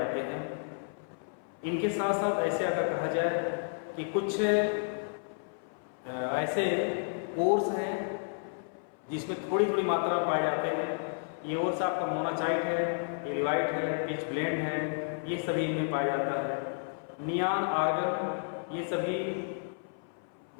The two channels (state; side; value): silent; right; 57 dB below the other